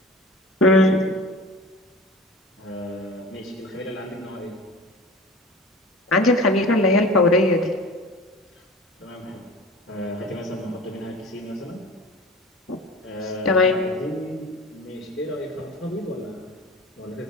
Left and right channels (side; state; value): both; normal; correlation 0.38